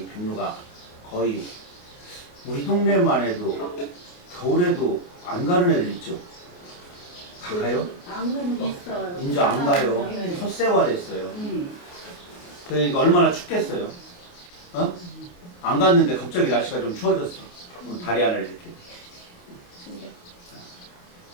백로가 거의 우리 동네만 해도 겨울에도 안 가는 애들 있죠. 가요? 안 가는 거 있어요. 이제 안 가요. 네. 솥세화됐어요. 그러니까 얼마나 춥겠어요. 어? 안 갔는데 갑자기 날씨가 좀 추워졌어. 다리 하나를 이렇게.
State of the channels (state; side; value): late; right; 28 ms